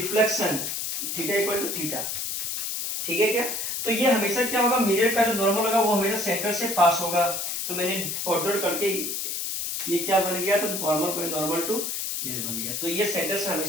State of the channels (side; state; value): left; noise; hiss, 3 dB below the sound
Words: theta equal to theta. ठीक है क्या, तो ये हमेशा क्या होगा, मिरर का जो नॉर्मल होगा वो हमेशा सेंटर से पास होगा। तो मैंने ऑर्डर करके ये क्या बन गया, तो नॉर्मल टू मिरर बन गया। तो ये सेंटर से